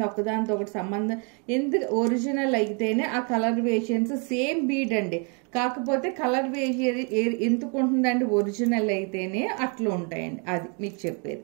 ఒకదానితో ఒకటి సంబంధం ఎందుకు ఒరిజినల్ అయితేనే ఆ కలర్ వేరియేషన్స్ సేమ్ బీడ్ అండి. కాకపోతే కలర్ వేరియేషన్ ఎందుకు ఉంటుందండి, ఒరిజినల్ అయితేనే అట్లా ఉంటాయండి. అది మీకు చెప్పేది.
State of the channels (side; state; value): left; quieter; 36.4 dB